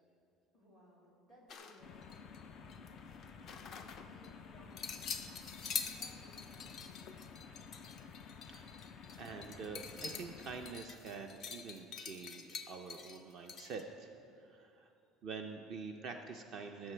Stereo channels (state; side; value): normal; both; correlation 0.47